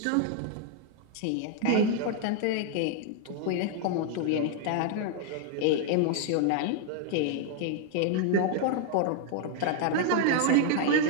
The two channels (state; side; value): different; both; correlation 0.00